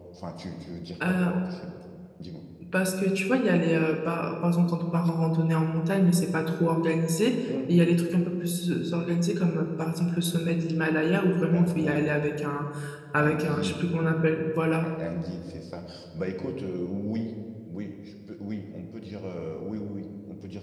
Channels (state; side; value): identical; both; correlation 1.00